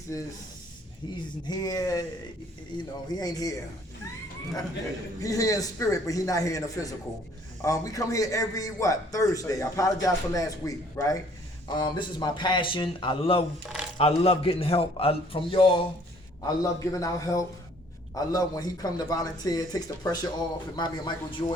he's here. You know, he ain't here. He's here in spirit, but he's not here in the physical. We come here every, Thursday. I apologize for last week, right? This is my passion. I love getting help from y'all. I love giving out help. I love when he come to volunteer, takes the pressure off. It reminds me of Michael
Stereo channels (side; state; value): both; normal; correlation 0.59